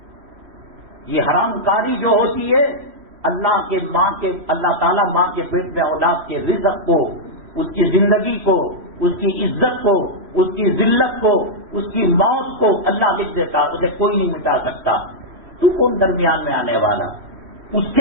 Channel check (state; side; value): late; left; 3.1 ms